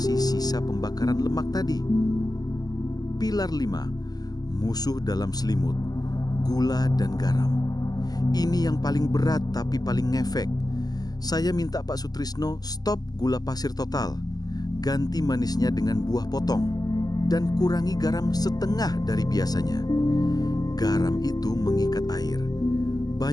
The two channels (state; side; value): late; right; 0.19 ms